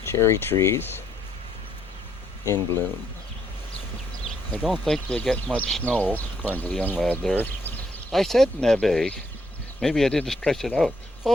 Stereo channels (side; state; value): both; normal; correlation 0.73